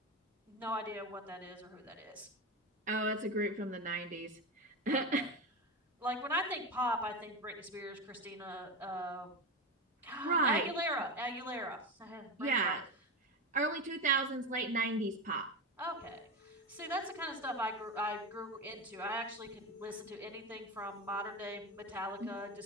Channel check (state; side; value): normal; both; correlation 0.19